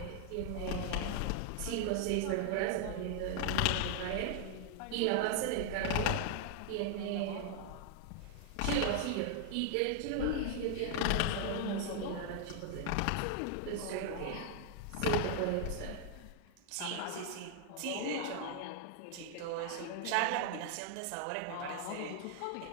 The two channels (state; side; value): different; both; correlation 0.00